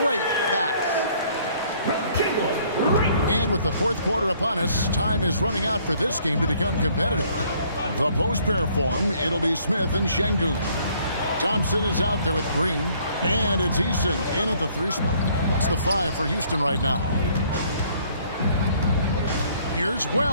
great pass. And with the fourth quarter upon us, time is running out for this game to become competitive. The post pair form, it'll be Smith and Şengün. Thompson is out there with Green, and it's Eason in at the 3 spot. That's the 5 for Houston right now. Here's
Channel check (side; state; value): both; inverted; correlation -0.61